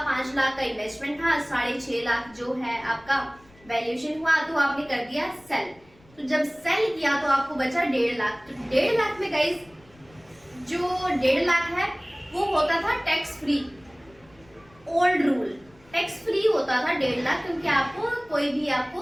5 लाख का इन्वेस्टमेंट था, 6.5 लाख जो है आपका वैल्यूएशन हुआ, तो आपने कर दिया सेल। तो जब सेल किया तो आपको बचा 1.5 लाख। तो 1.5 लाख में गाइस, जो 1.5 लाख है वो होता था tax free. Old rule tax free होता था 1.5 लाख, क्योंकि आपको कोई भी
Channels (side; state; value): left; noise; rumble, 28 dB below the sound